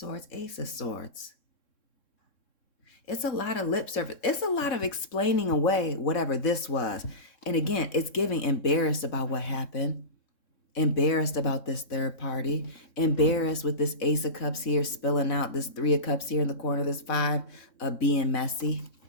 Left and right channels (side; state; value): right; late; 3.7 ms